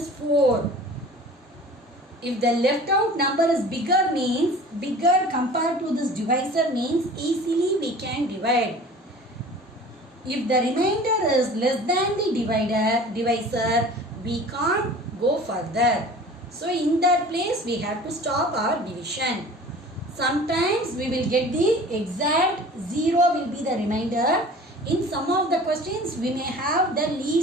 4. If the left out number is bigger means, bigger compared to this divisor means easily we can divide. If the remainder is less than the divisor, we can't go further. So in that place we have to stop our division. Sometimes we will get the exact 0 will be the remainder. In some of the questions we may have the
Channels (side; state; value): both; normal; correlation 0.43